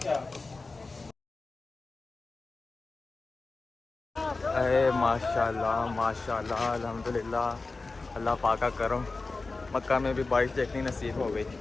अरे माशाल्लाह माशाल्लाह अल्हम्दुलिल्लाह, अल्लाह पाक का करम, मक्का में भी बारिश देखनी नसीब हो गई।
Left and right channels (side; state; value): right; quieter; 3.7 dB